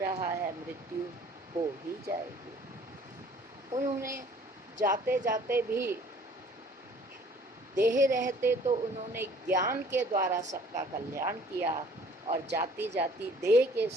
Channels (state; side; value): normal; both; correlation 0.54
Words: है मृत्यु हो ही जाएगी। उन्होंने जाते जाते भी देह रहते तो उन्होंने ज्ञान के द्वारा सबका कल्याण किया और जाती जाती देह के